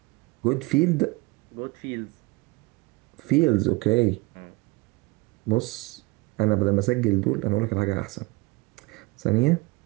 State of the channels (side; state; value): left; quieter; 24.0 dB